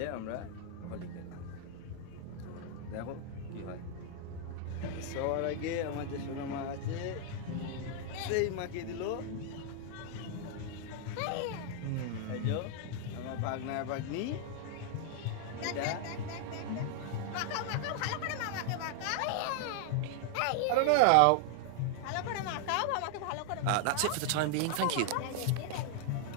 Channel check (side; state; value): both; different; correlation 0.00